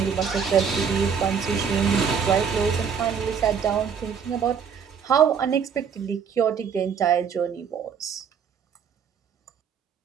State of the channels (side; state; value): left; quieter; 6.9 dB